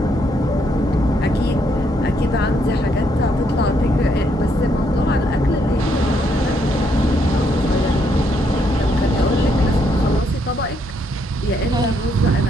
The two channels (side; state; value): both; normal; correlation 0.73